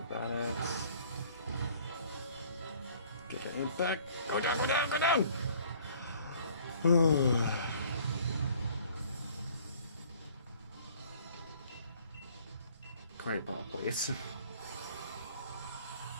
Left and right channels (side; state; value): both; inverted; correlation -0.55